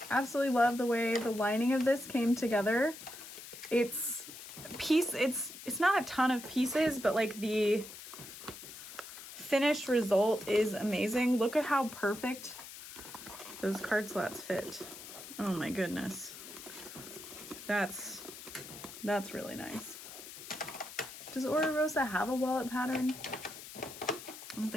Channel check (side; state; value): left; noise; hiss, 13 dB below the sound